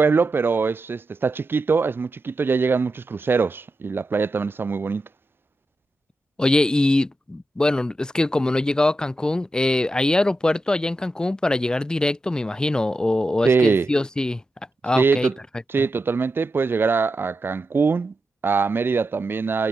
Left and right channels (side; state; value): both; normal; correlation 0.89